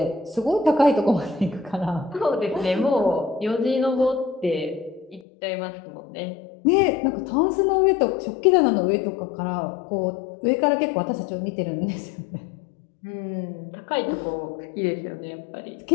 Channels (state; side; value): drops out; right; at 5.2 s